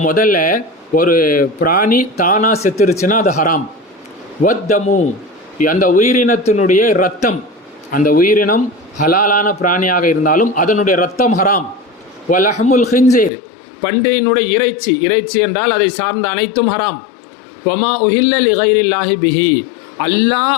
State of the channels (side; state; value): right; drops out; at 13.3 s